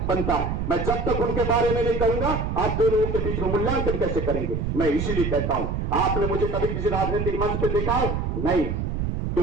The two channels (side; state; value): right; noise; rumble, 1 dB below the sound